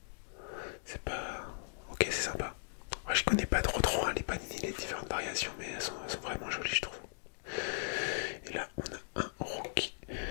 C'est pas... Ok, c'est sympa. Moi je connais pas trop hein, les panini, les différentes variations, mais elles sont vraiment jolies je trouve. Et là on a un rookie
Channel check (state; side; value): silent; right; digital silence